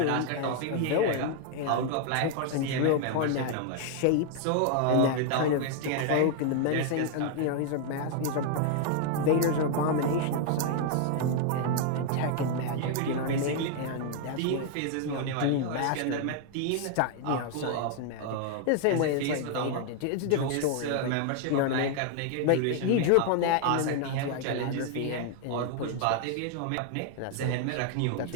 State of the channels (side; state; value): both; different; correlation 0.00